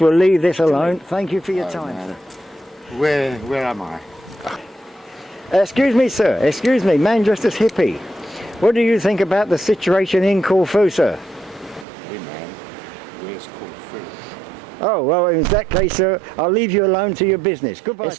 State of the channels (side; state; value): left; drops out; at 11.9 s